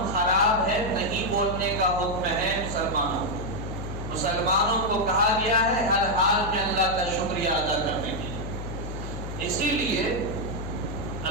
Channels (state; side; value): noise; left; hum, 7 dB below the sound